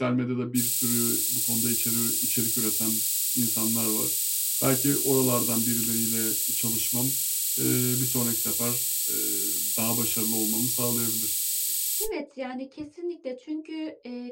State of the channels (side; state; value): both; identical; correlation 1.00